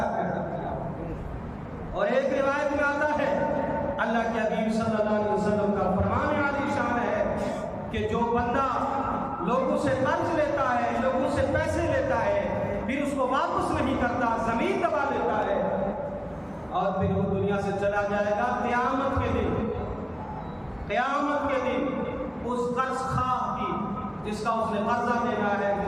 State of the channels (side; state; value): both; identical; correlation 1.00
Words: کیا. اور ایک روایت میں آتا ہے اللہ کے حبیب صلی اللہ علیہ وسلم کا فرمان عالی شان ہے کہ جو بندہ لوگوں سے قرض لیتا ہے, لوگوں سے پیسے لیتا ہے, پھر اس کو واپس نہیں کرتا, زمین دبا لیتا ہے اور پھر وہ دنیا سے چلا جائے گا, قیامت کے دن اس قرض خواہ کی جس کا اس نے قرضہ دینا ہے,